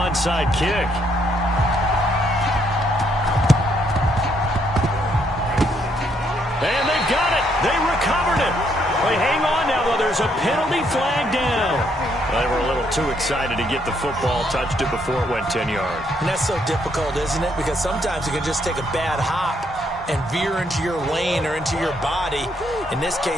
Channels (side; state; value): both; normal; correlation 0.72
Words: kick. And they've got it. They recovered it. They hang on now, though. There's a penalty flag down. They were a little too excited to get the football, touched it before it went 10 yards. And that's so difficult, isn't it? Because sometimes you can just take a bad hop and veer into your lane or into your body. In this